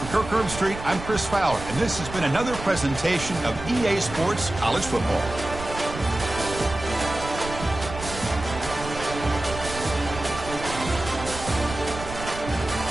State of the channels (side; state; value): right; noise; rumble, 10 dB below the sound